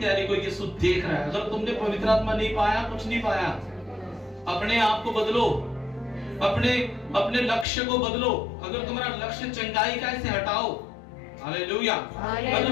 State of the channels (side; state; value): right; drops out; at 7.7 s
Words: को यीशु देख रहा है। अगर तुमने पवित्र आत्मा नहीं पाया, कुछ नहीं पाया, अपने आप को बदलो, अपने लक्ष्य को बदलो। अगर तुम्हारा लक्ष्य चंगाई का, इसे हटाओ। हालेलुया।